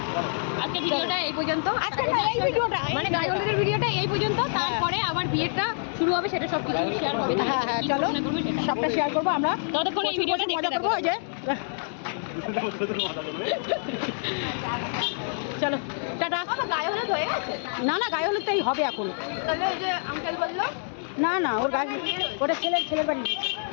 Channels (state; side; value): silent; right; 60 dB below the other